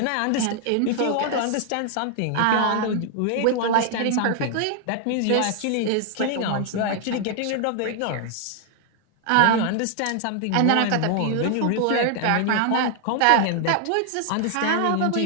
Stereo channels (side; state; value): both; different; correlation 0.00